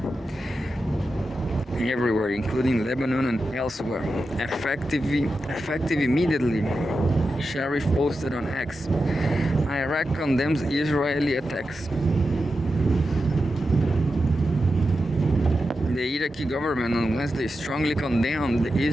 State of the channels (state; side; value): normal; both; correlation 0.90